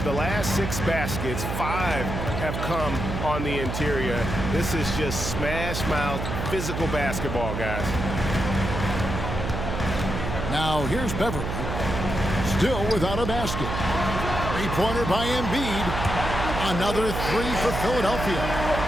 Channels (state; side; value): noise; right; hum, 4 dB below the sound